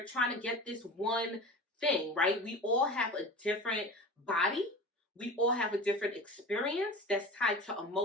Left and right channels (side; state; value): both; normal; correlation 0.33